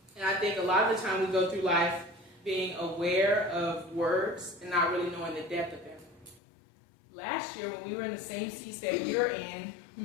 And I think a lot of the time we go through life being aware of words and not really knowing the depth of them. Last year, when we were in the same seats that you're in,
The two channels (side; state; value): right; drops out; at 6.4 s